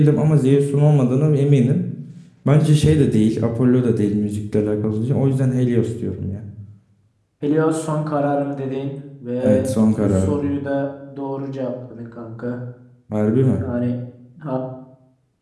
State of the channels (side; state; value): both; identical; correlation 1.00